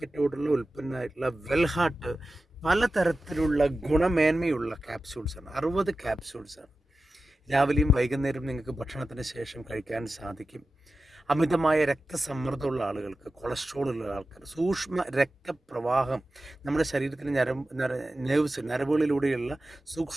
ഉൽപ്പന്നമായിട്ടുള്ള വെൽഹാർട്ട് പലതരത്തിലുള്ള ഗുണമേന്മയുള്ള ക്യാപ്സ്യൂൾസാണ്. 60 ക്യാപ്സ്യൂൾസാണ്. രാവിലെയും വൈകുന്നേരവും നിങ്ങൾക്ക് ഭക്ഷണത്തിന് ശേഷം കഴിക്കാൻ സാധിക്കും. അമിതമായ രക്തസമ്മർദ്ദമുള്ള ആളുകൾക്ക്, കൊളസ്ട്രോൾ ഉള്ള ആൾക്കാർ, സൂക്ഷ്മ രക്തപ്രവാഹം, നമ്മുടെ ശരീരത്തിന് നരമ്പുകളിലൂടെയുള്ള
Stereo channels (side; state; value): both; normal; correlation 0.93